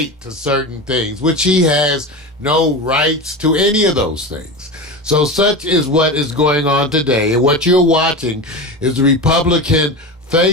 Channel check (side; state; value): both; normal; correlation 0.25